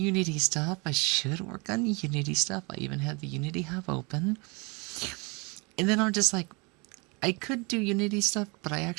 stuff. I even had the Unity Hub open. And then I'm just like, I could do Unity stuff, but I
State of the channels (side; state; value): left; quieter; 29.6 dB